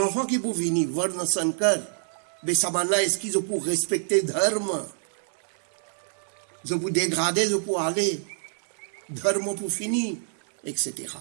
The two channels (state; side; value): silent; left; digital silence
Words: qui pour venir voir dans son cœur, mais ça va là, est-ce qu'ils ont pour respecter dharma, ils ont pour dégrader, ils ont pour aller, dharma pour finir, etc.